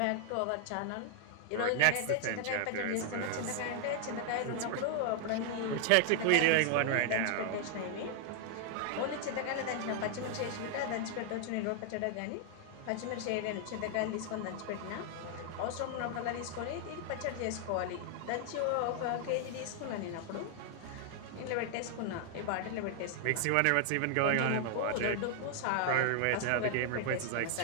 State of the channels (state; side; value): different; both; correlation 0.00